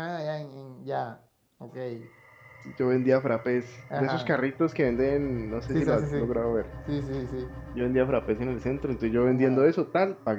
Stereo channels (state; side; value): identical; both; correlation 1.00